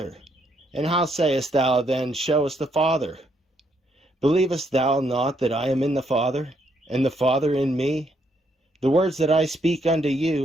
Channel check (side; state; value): both; normal; correlation 0.74